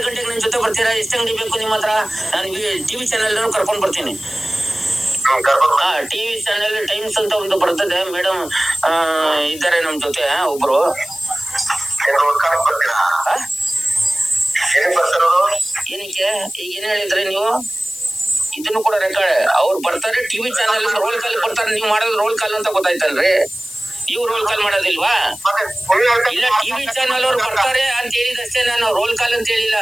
ಗಂಟೆಗೆ ನನ್ನ ಜೊತೆ ಬರ್ತೀರಾ? ಎಷ್ಟು ಅಂಗಡಿ ಬೇಕು ನಿಮ್ಮ ಹತ್ರ? ನಾನು ಟಿವಿ ಚಾನೆಲ್ ಕರ್ಕೊಂಡ್ ಬರ್ತೀನಿ. ಟಿವಿ ಚಾನೆಲ್ ಟೈಮ್ಸ್ ಅಂತ ಒಂದು ಬರ್ತದೆ, ಮೇಡಮ್ ಇದ್ದಾರೆ ನಮ್ ಜೊತೆ ಒಬ್ರು. ಏನಕ್ಕೆ ಈಗ ಏನ್ ಹೇಳಿದ್ರಿ ನೀವು? ಇದನ್ನು ಕೂಡ ರೆಕಾರ್ಡ್. ಅವ್ರು ಬರ್ತಾರೆ ಟಿವಿ ಚಾನೆಲ್ ರೋಲ್ ಕಾಲ್ ಬರ್ತಾರೆ, ನೀವು ಮಾಡೋದು ರೋಲ್ ಕಾಲ್ ಅಂತ ಗೊತ್ತಾಯ್ತಲ್ರಿ. ನೀವು ರೋಲ್ ಕಾಲ್ ಮಾಡೋದಿಲ್ವಾ? ಇಲ್ಲ, ಟಿವಿ ಚಾನೆಲ್ ಅವ್ರು ಬರ್ತಾರೆ ಅಂತ ಹೇಳಿದಷ್ಟೇ, ನಾನು ರೋಲ್ ಕಾಲ್ ಅಂತ ಹೇಳಿಲ್ಲ.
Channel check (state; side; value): noise; left; hiss, 14 dB below the sound